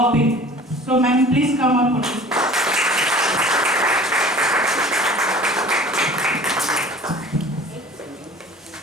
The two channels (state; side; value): normal; both; correlation 0.44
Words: So ma'am, please come up on the stage.